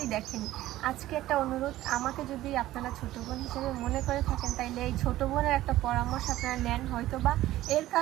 দেখেন। আজকে একটা অনুরোধ, আমাকে যদি আপনারা ছোট বোন হিসেবে মনে করে থাকেন তাইলে এই ছোট বোনের একটা পরামর্শ আপনারা নেন, হয়তো বা এর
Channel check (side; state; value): left; quieter; 15.2 dB